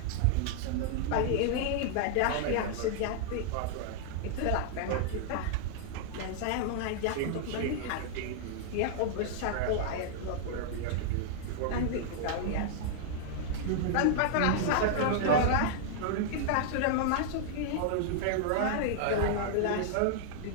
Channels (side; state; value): both; different; correlation -0.01